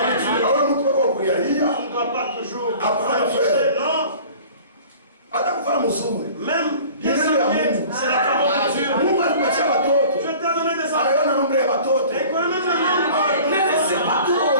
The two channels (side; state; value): both; inverted; correlation -0.45